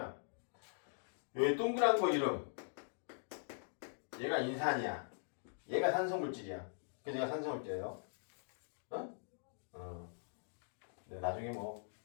여기 동그란 거 이름, 얘가 인산이야. 얘가 산성물질이야. 그래서 얘가 산성을 떼요. 네, 나중에 뭐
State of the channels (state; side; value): silent; right; digital silence